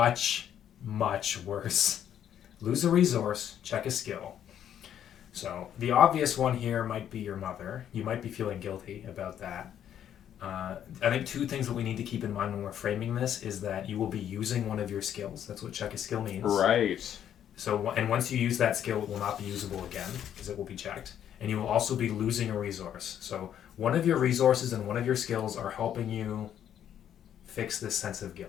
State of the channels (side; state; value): right; quieter; 10.0 dB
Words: much worse? Lose a resource, check a skill. So, the obvious one here might be your mother. You might be feeling guilty about that. I think two things that we need to keep in mind when we're framing this is that you will be using one of your skills. That's what check a skill means. Right. So, and once you use that skill, it will not be usable again because it will be checked. And you will also be losing a resource. So, one of your resources and one of your skills are helping you fix this sense of